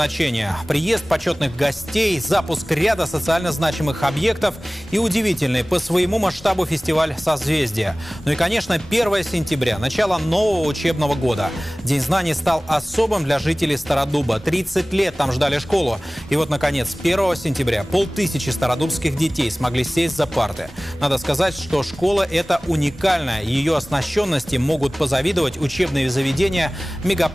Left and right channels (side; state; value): both; normal; correlation 0.98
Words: Приезд почетных гостей, запуск ряда социально значимых объектов и удивительный по своему масштабу фестиваль «Созвездие». Ну и, конечно, 1 сентября, начало нового учебного года. День знаний стал особым для жителей Стародуба. 30 лет там ждали школу. И вот, наконец, 1 сентября 500 стародубских детей смогли сесть за парты. Надо сказать, что школа эта уникальная. Ее оснащенности могут позавидовать учебные заведения